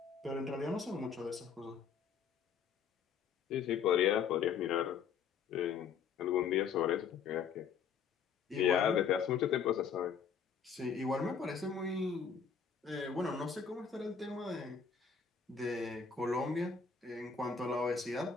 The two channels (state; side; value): quieter; right; 6.6 dB